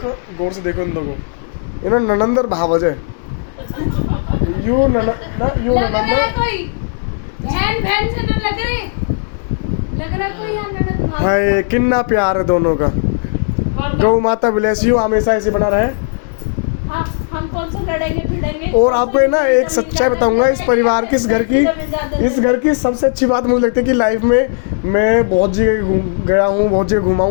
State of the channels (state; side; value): silent; right; 61 dB below the other